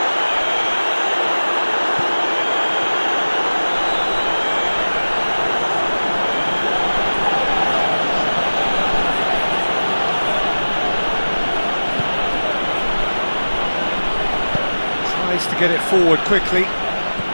Tries to get it forward quickly.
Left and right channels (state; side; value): inverted; both; correlation -1.00